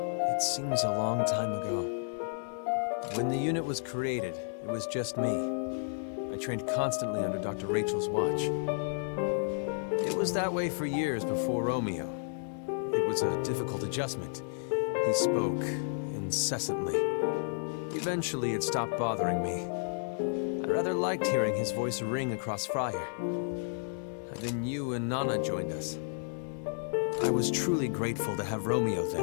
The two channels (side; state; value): right; silent; digital silence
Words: It seems a long time ago. When the unit was created, it was just me. I trained constantly under Dr. Rachel's watch. It was that way for years before Romeo. It was a difficult adjustment. He spoke incessantly. Eventually, it stopped bothering me. I rather liked hearing his voice ring across Friar. And then you and Nana joined us. I was truly grateful to have Romeo